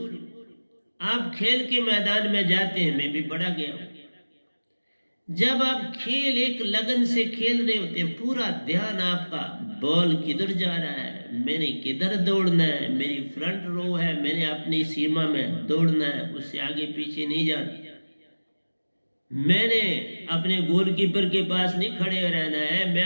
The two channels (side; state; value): both; inverted; correlation -1.00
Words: आप खेल के मैदान में जाते हैं, मैं भी बड़ा गया हूं। जब आप खेल एक लगन से खेल रहे होते हैं, पूरा ध्यान आपका बॉल किधर जा रहा है, मैंने किधर दौड़ना है, मेरी फ्रंट रो है, मैंने अपनी सीमा में दौड़ना है, उससे आगे पीछे नहीं जाना। मैंने अपने गोलकीपर के पास नहीं खड़े रहना है। मैं